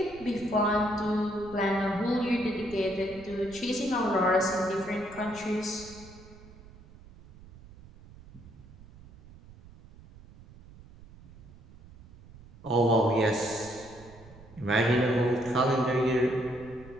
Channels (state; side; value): noise; right; rumble, 21 dB below the sound